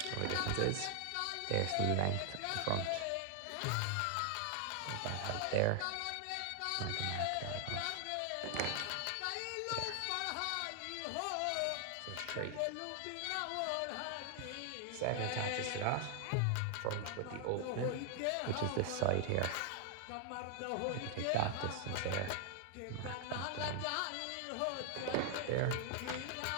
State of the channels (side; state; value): both; different; correlation 0.00